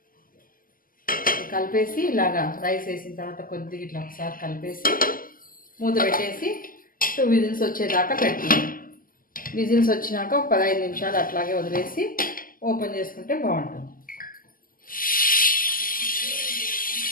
కలిపేసి ఇలాగా రైస్ వేసిన తర్వాత కొద్దిగా ఇట్లా ఒకసారి కలిపేసి మూత పెట్టేసి 2 విజిల్స్ వచ్చేదాకా పెట్టుకుంటాం. విజిల్స్ వచ్చినాక ఒక 15 నిమిషాలు అట్లాగే వదిలేసి ఓపెన్ చేసుకుంటే బాగుంటుంది.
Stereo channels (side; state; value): right; late; 0.41 ms